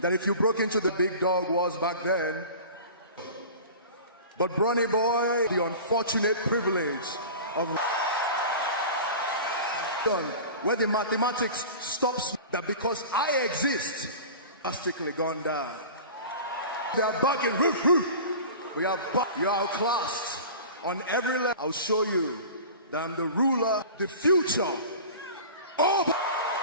if you broke into the big dog wars back then, but Bronny Boy, the unfortunate privilege of where the mathematics stops, that because I exist, drastically gone down. We are back in we are back. You are outclassed on every level. I'll show you that I'm the ruler, the future. Oh!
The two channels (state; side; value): inverted; both; correlation -0.36